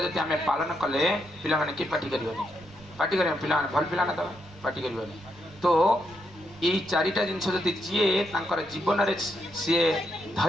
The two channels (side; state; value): right; noise; rumble, 22 dB below the sound